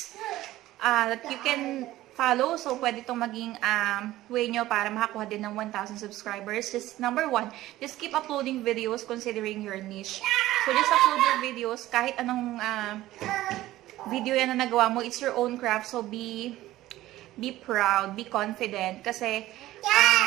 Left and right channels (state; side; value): quieter; left; 15.7 dB